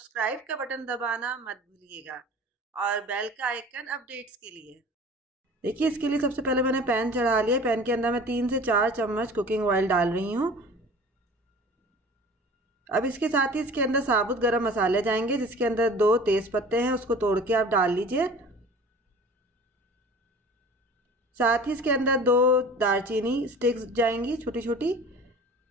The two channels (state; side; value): normal; both; correlation 0.42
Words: का बटन दबाना मत भूलिएगा और बेल का आइकन अपडेट्स के लिए। देखिए, इसके लिए सबसे पहले मैंने पैन चढ़ा लिया। पैन के अंदर मैं 3 से 4 चम्मच कुकिंग ऑयल डाल रही हूँ। अब इसके साथ ही इसके अंदर साबुत गरम मसाले जाएंगे, जिसके अंदर 2 तेज पत्ते हैं, उसको तोड़ के आप डाल लीजिए। साथ ही इसके अंदर 2 दालचीनी स्टिक्स जाएंगी छोटी छोटी,